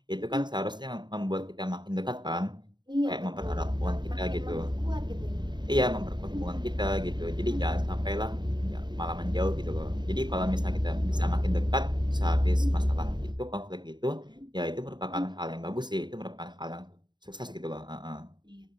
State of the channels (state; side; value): late; left; 0.21 ms